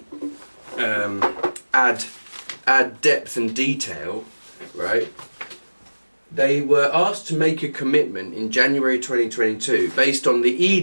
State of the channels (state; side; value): inverted; both; correlation -1.00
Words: add depth and detail, right? They were asked to make a commitment in January 2022 based on the